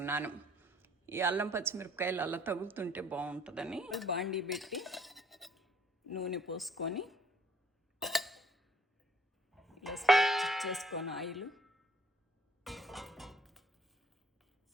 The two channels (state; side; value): normal; both; correlation 0.61